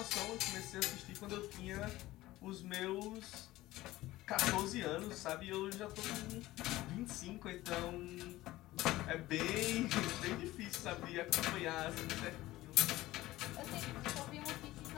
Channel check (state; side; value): quieter; right; 17.2 dB